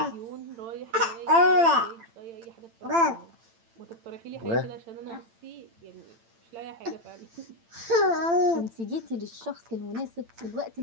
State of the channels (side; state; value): left; late; 8.9 ms